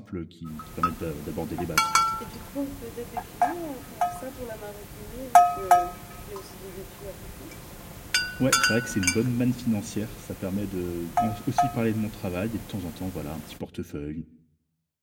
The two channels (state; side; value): identical; both; correlation 1.00